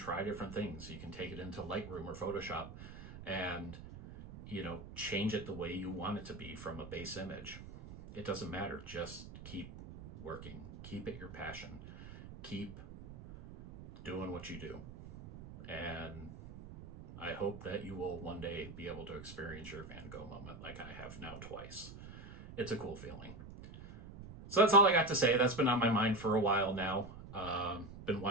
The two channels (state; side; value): noise; right; rumble, 13 dB below the sound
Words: different things. You can take it into Lightroom or Photoshop and, change it the way you want it to be from a base image. It doesn't matter. Just keep working. Keep it your passion. Keep doing what you do. And I hope that you will one day be able to experience your Van Gogh moment like I have now twice. It's a cool feeling. So that's all I got to say. That's been on my mind for a while now. Been